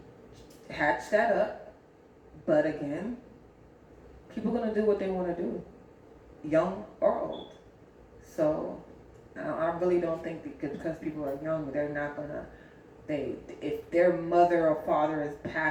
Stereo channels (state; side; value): identical; both; correlation 1.00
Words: hatch that up. But again, people are going to do what they want to do, young or old. So I really don't think because people are young, they're not going to, if their mother or father is